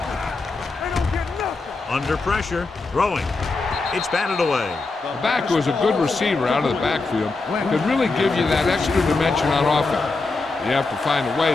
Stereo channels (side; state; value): right; quieter; 3.7 dB